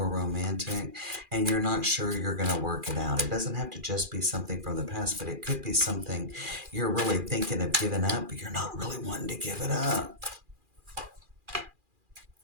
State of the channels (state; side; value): late; left; 2.4 ms